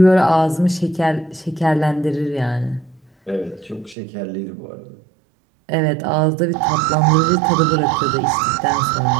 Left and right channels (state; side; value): drops out; left; at 4.0 s